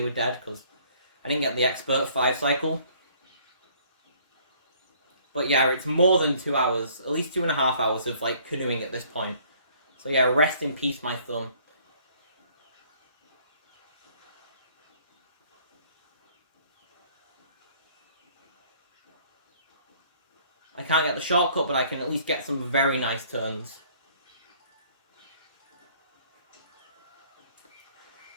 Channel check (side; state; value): both; inverted; correlation -0.59